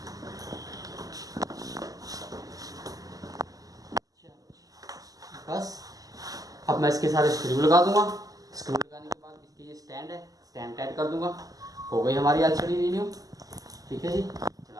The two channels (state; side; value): late; left; 0.17 ms